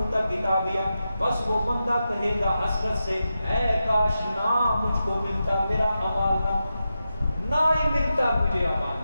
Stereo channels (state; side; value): inverted; both; correlation -0.90